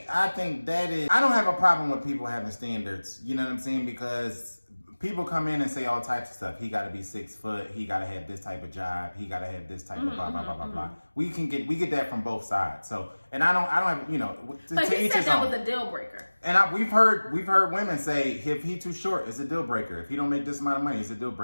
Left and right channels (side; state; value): both; inverted; correlation -1.00